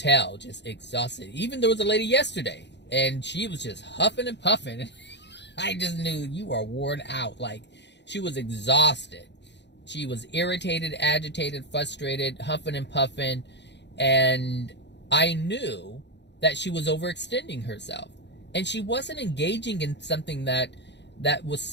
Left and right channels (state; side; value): late; right; 0.51 ms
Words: just exhausted. Even there was a lady yesterday, and she was just huffing and puffing. I just knew you are worn out. Like, she was exhausted. She was irritated, agitated, frustrated, huffing and puffing, and I knew that she was overextending herself. And she wasn't engaging in something that